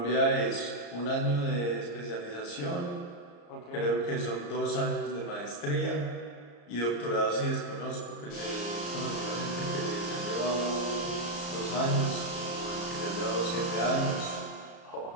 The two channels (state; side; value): late; right; 34 ms